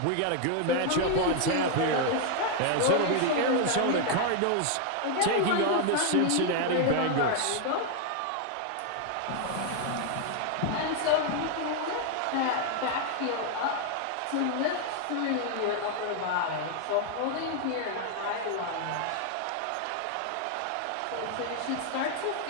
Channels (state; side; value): different; both; correlation 0.00